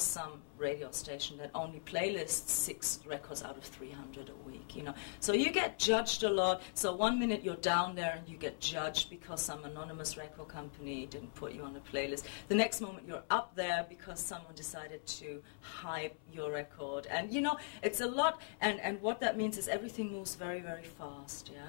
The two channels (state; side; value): silent; right; 51 dB below the other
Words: some radio station that only playlists 6 records out of 300 a week, you know. So you get judged a lot. So one minute you're down there and you get judged because some anonymous record company didn't put you on a playlist. The next moment you're up there because someone decided to hype your record. And, you know, it's a lot. And what that means is everything moves very, very fast,